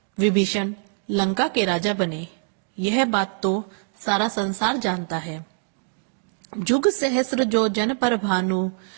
विभीषण लंका के राजा बने। यह बात तो सारा संसार जानता है। जुग सहस्र जो जन पर भानु,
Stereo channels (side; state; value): left; silent; digital silence